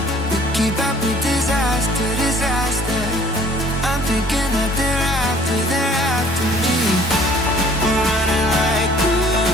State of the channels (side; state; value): both; normal; correlation 0.55